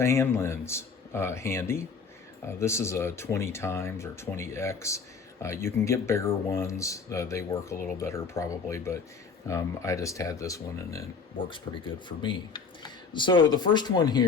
hand lens handy. This is a 20 times or 20X. You can get bigger ones. They work a little better probably, but I just had this one, and it works pretty good for me. So the first one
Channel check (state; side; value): quieter; right; 5.1 dB